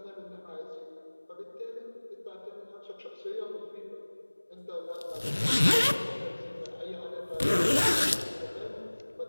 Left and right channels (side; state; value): both; inverted; correlation -1.00